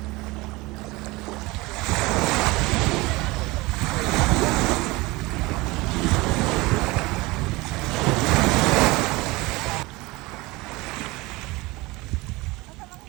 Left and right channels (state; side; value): quieter; left; 22.3 dB